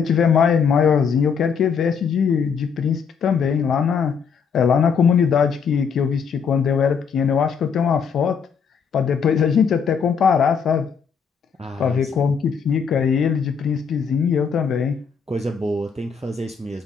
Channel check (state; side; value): quieter; right; 6.4 dB